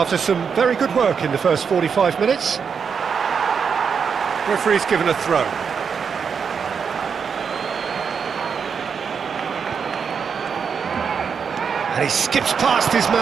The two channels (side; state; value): left; quieter; 6.4 dB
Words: some very good work in the first 45 minutes. Referee's given a throw. And he skips past his